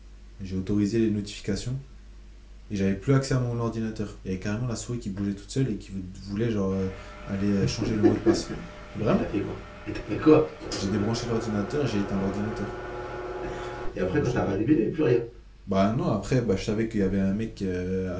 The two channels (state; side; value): identical; both; correlation 1.00